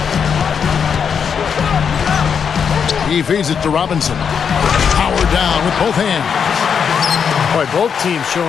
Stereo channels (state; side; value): quieter; right; 6.9 dB